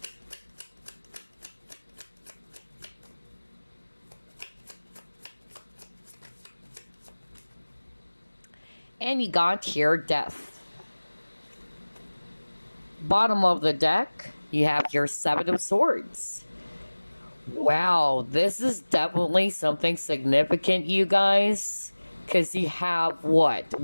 and you got here Death. Bottom of the deck, you have your 7 of Swords. Wow, this is definitely something significant, you guys. Because you have what?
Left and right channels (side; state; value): both; inverted; correlation -1.00